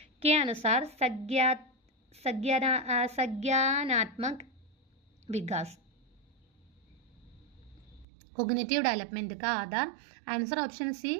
के अनुसार संज्ञानात्मक विकास कोग्निटिव डेवलपमेंट का आधार, आंसर ऑप्शन सी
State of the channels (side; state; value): left; drops out; at 8.1 s